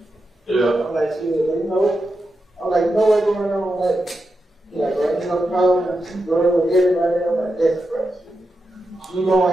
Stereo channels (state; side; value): normal; both; correlation 0.88